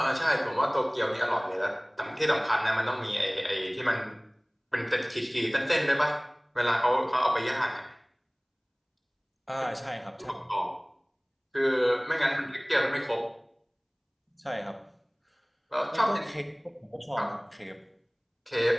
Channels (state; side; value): identical; both; correlation 1.00